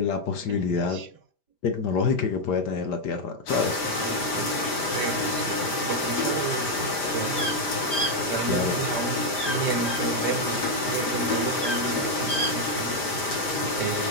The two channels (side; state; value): right; late; 5.0 ms